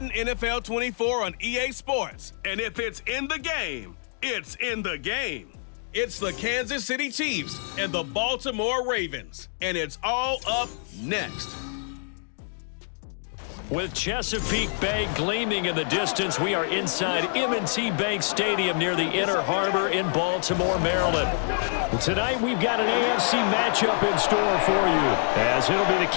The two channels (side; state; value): right; silent; digital silence